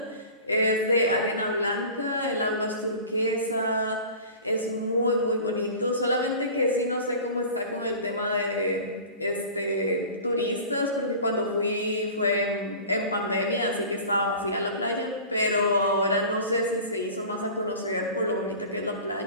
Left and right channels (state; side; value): inverted; both; correlation -0.39